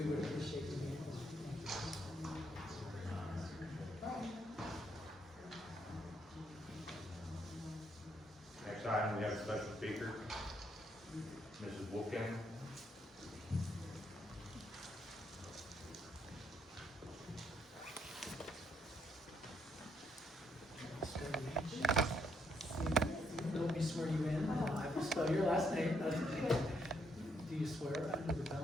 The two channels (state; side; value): normal; both; correlation 0.74